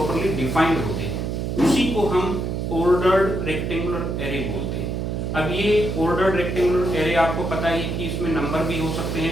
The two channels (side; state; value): right; noise; hum, 2 dB below the sound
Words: डिफाइंड होते हैं। उसी को हम ऑर्डर्ड रेक्टेंगुलर एरे बोलते हैं। अब ये ऑर्डर्ड रेक्टेंगुलर एरे आपको पता है कि इसमें नंबर भी हो सकते